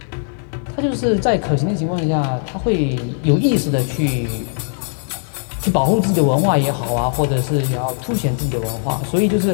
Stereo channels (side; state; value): right; silent; 63 dB below the other